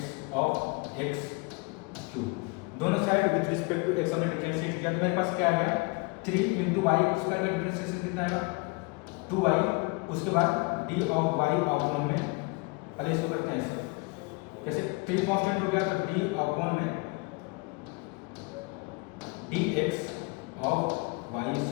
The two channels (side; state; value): right; quieter; 28.1 dB